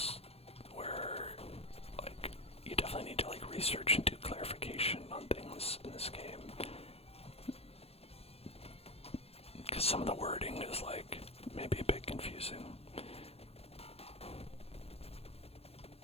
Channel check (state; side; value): late; right; 0.29 ms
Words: where like you definitely need to like research and do clarification on things in this game. Because some of the wording is like maybe a bit confusing.